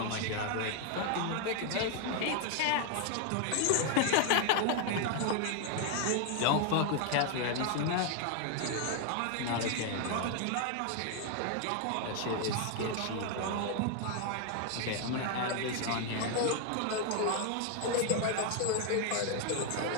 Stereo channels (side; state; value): both; different; correlation 0.00